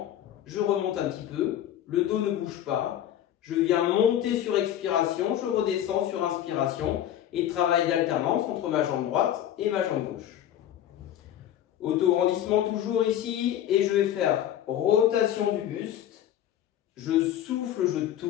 je remonte un petit peu. Le dos ne bouge pas. Je viens monter sur expiration, je redescends sur inspiration et travail d'alternance entre ma jambe droite et ma jambe gauche. Auto-grandissement toujours ici et je vais faire rotation du buste. Je souffle, je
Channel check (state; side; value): quieter; right; 11.2 dB